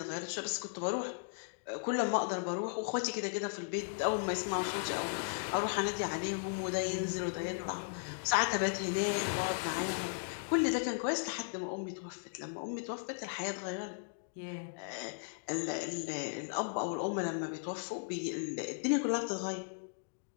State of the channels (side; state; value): right; silent; digital silence